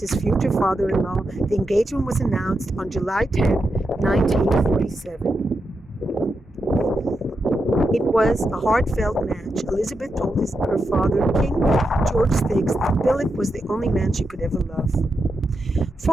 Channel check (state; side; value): normal; both; correlation 0.86